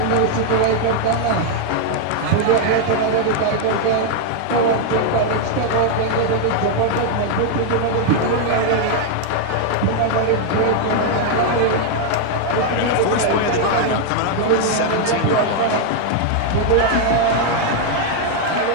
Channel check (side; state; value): both; different; correlation 0.00